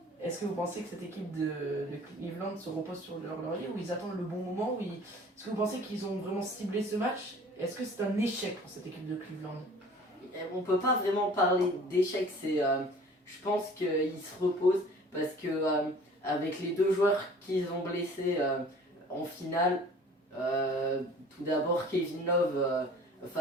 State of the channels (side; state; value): both; normal; correlation 0.48